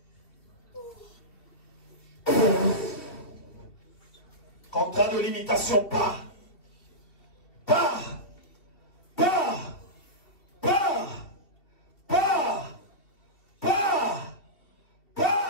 Contrat de limitation, pars.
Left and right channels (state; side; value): late; right; 2.7 ms